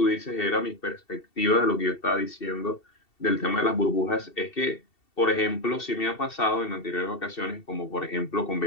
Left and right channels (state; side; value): late; right; 2.7 ms